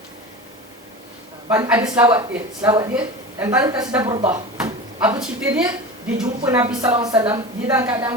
Ada selawat dia dan tadi kasidah burdah. Apa cerita dia? Dia jumpa Nabi sallallahu alaihi wasallam, dia dalam keadaan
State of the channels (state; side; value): normal; both; correlation 0.30